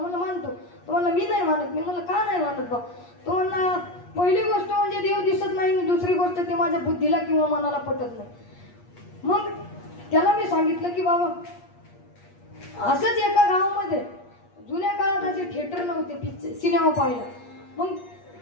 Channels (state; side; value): late; right; 8.4 ms